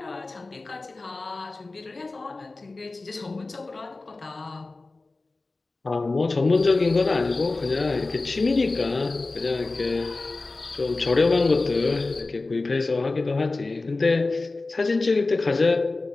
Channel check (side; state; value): right; quieter; 3.4 dB